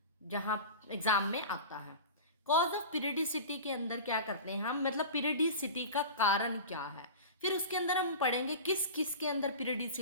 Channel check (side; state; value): both; inverted; correlation -0.32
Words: जहाँ एग्जाम में आता है। कॉज ऑफ पीरियडिसिटी के अंदर क्या करते हैं हम, मतलब पीरियडिसिटी का कारण क्या है। फिर उसके अंदर हम पढ़ेंगे किस किस के अंदर